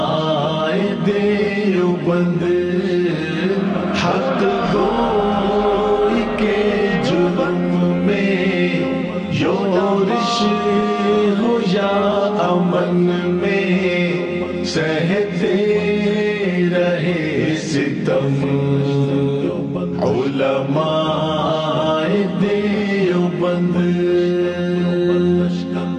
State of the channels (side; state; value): both; identical; correlation 1.00